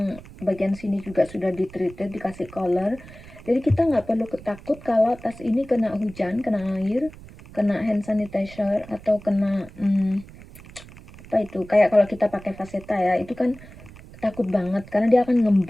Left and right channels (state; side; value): noise; right; rumble, 19 dB below the sound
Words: bagian sini juga sudah ditreated, dikasih color, jadi kita nggak perlu takut kalau tas ini kena hujan, kena air, kena hand sanitizer, atau kena apa itu, kayak kalau kita pakai Vachetta ya, itu kan takut banget karena dia akan